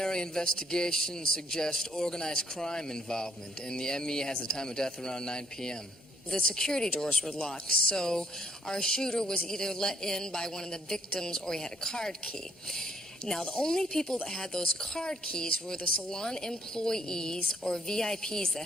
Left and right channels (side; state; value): both; normal; correlation 0.67